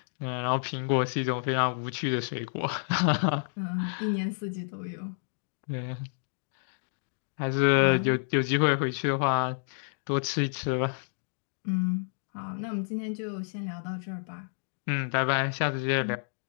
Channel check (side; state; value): right; silent; digital silence